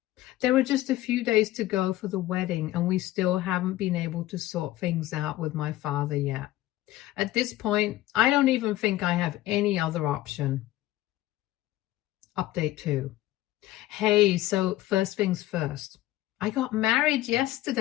There are just a few days to go for the wedding, and we still haven't been able to sort things out with my father yet. At this point, I don't even think I have any other option. Update 2. Hey, so first things first. I got married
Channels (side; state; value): right; quieter; 15.8 dB